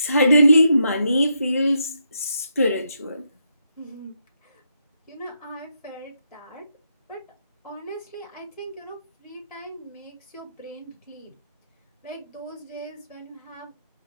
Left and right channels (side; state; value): both; inverted; correlation -0.80